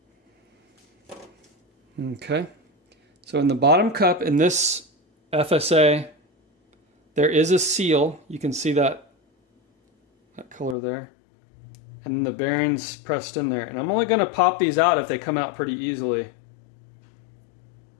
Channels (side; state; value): right; drops out; at 10.8 s